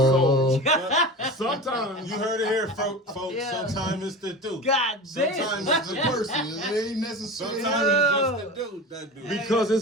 Sometimes You heard it here, folks. Yeah. Sometimes it's the dude. God damn. Sometimes It's it's the the person. It ain't necessary. Sometimes it's just the dude. That dude. because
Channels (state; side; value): normal; both; correlation 0.31